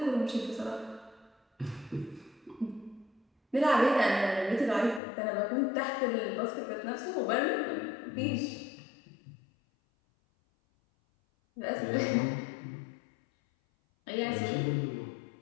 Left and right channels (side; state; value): right; drops out; at 5.0 s